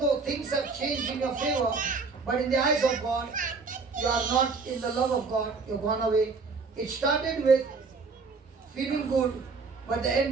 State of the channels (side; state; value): left; quieter; 4.5 dB